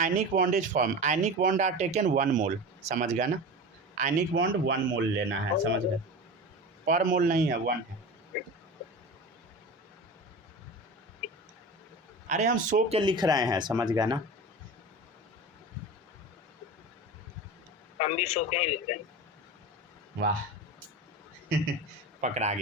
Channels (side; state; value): both; normal; correlation 0.30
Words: bond is form. Ionic bond are taken 1 mole. समझ गया ना? आयनिक बॉन्ड 1 मोल लेना है। समझ गए? पर मोल नहीं है, 1 है। अरे हम 100 के लिख रहे हैं। समझ गया ना? हम भी 100 के ही लिख रहे हैं। वाह पकड़ा